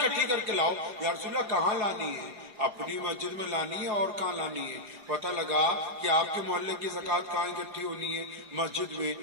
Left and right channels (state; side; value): late; left; 4.9 ms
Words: کر کے لاؤ. یا رسول اللہ کہاں لانی ہے؟ اپنی مسجد میں لانی ہے اور کہاں لانی ہے؟ پتہ لگا کہ آپ کے محلے کی زکوٰۃ کہاں اکٹھی ہونی ہے؟ مسجد میں.